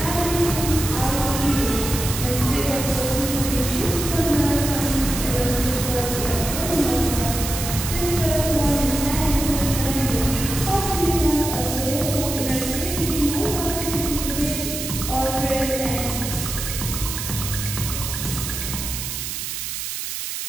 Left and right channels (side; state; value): right; noise; hiss, 5 dB below the sound